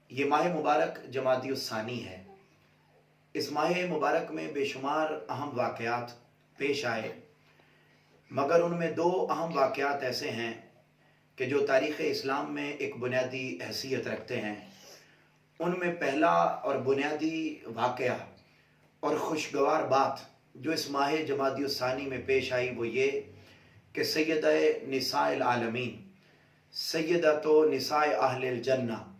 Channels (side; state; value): both; identical; correlation 1.00